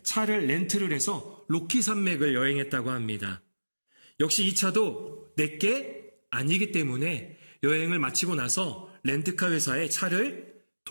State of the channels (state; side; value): inverted; both; correlation -1.00